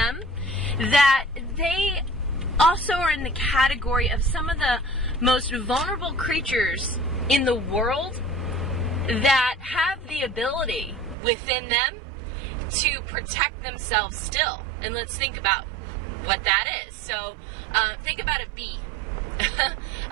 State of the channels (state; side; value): drops out; left; at 11.2 s